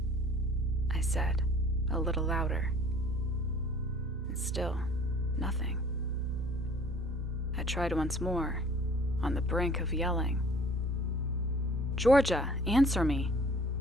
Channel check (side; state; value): both; normal; correlation 0.52